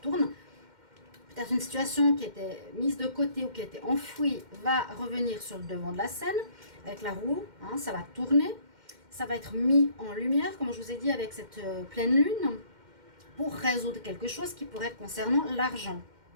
Peut-être une situation qui était mise de côté ou qui était enfouie va revenir sur le devant de la scène avec la roue, hein, ça va tourner, ça va être mis en lumière, comme je vous ai dit, avec cette pleine lune, pour résoudre quelque chose qui pourrait être concernant l'argent.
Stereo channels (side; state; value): left; late; 2.1 ms